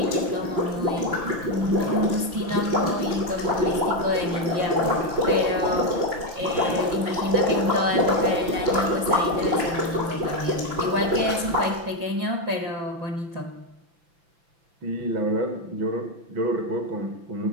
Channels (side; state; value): left; late; 5.9 ms